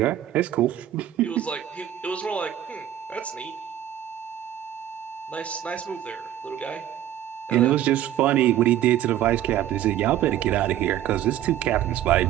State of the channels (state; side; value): quieter; left; 11.9 dB